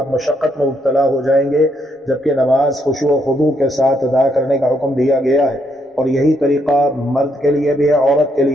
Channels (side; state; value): both; normal; correlation 0.75